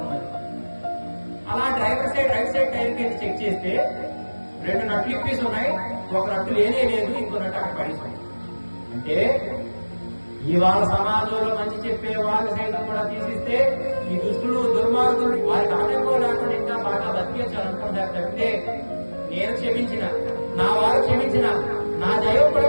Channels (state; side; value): inverted; both; correlation -1.00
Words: అలా driver side right side tyre కి చెక్ చేస్తే 2 నట్లు ఇప్పేసి ఉన్నాయి, ఒక నట్టు లేనే లేదు, ఇంకో నట్టు అక్కడ పడింది. అంటే ఇవాళ సమాజంలో మంచి చెప్పే వాళ్ళు సైతం కూడా తీసిస్తే ఈ దుష్టులు దుర్మార్గులు వారికి ఆటంకం లేకుండా ఇంకా బాగా బతికేయాలనుకుంటారు తప్పితే నేను క్షమించిన, నా వారు క్షమించిన, నా దైవం కూడా